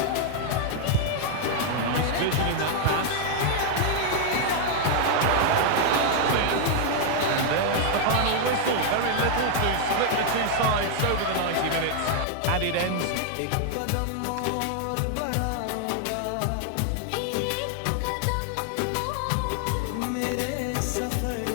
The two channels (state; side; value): different; both; correlation 0.00